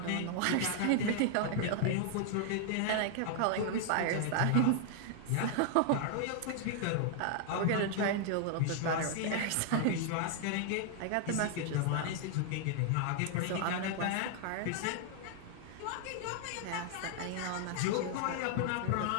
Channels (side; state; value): both; different; correlation 0.00